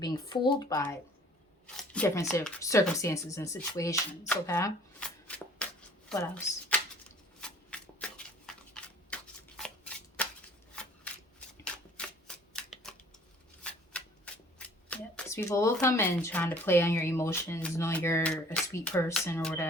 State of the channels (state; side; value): normal; both; correlation 0.52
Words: being fooled by different circumstances and situations. Okay, what else? Yeah, because people will come in trying to play on your emotions, knowing you're a sweet person or